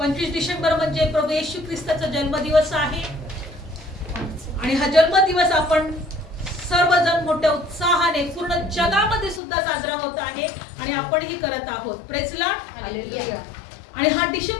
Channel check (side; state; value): right; drops out; at 9.4 s